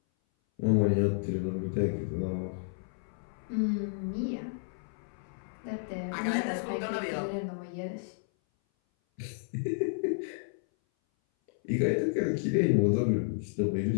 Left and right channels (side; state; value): right; silent; 57 dB below the other